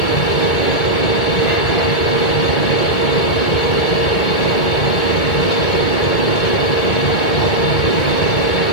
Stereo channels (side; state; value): right; late; 2.3 ms